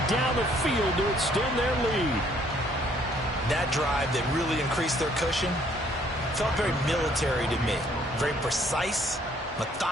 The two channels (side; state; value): both; normal; correlation 0.64